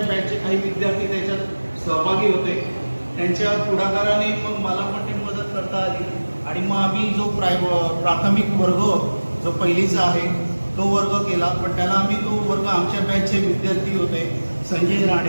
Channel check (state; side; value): inverted; both; correlation -1.00